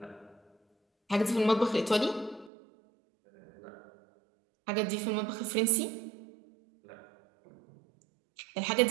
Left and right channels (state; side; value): drops out; left; at 2.5 s